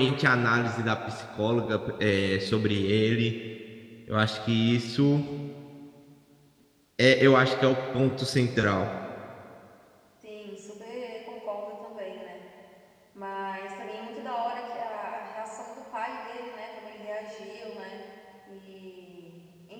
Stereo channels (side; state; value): both; identical; correlation 1.00